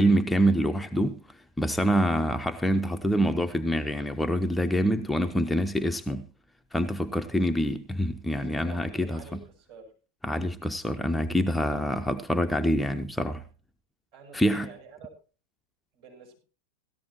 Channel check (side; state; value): both; normal; correlation 0.85